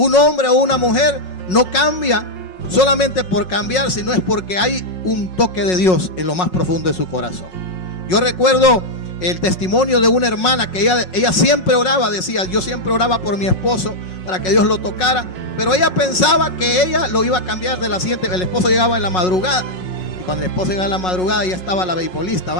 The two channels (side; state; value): right; late; 5.5 ms